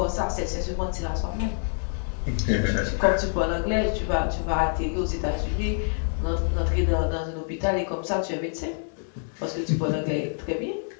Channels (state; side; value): silent; right; 61 dB below the other